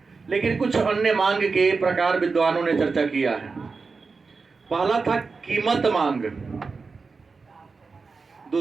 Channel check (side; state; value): left; quieter; 4.5 dB